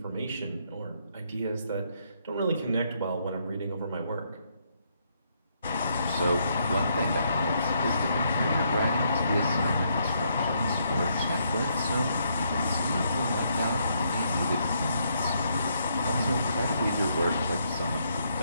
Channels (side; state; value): both; inverted; correlation -0.74